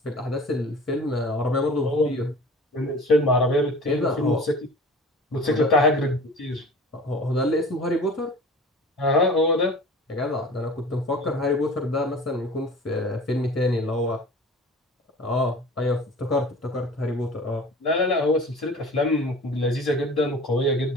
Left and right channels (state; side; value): normal; both; correlation 0.41